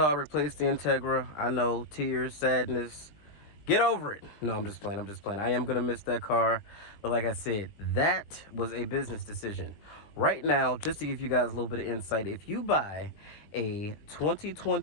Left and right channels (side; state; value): right; late; 20 ms